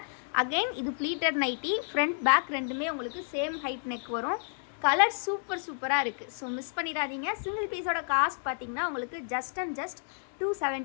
அகெயின் இது ப்ளீட்டட் நைட்டி. ஃப்ரண்ட் பேக் ரெண்டுமே உங்களுக்கு சேம் ஹைட் நெக் வரும். கலர் சூப்பராக இருக்குது. ஸோ மிஸ் பண்ணிடாதீங்க. சிங்கிள் பீஸோட காஸ்ட் பார்த்தீங்கன்னா உங்களுக்கு ஜஸ்ட்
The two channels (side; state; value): right; silent; digital silence